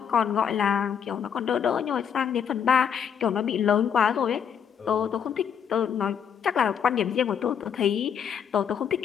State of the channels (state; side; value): quieter; right; 7.8 dB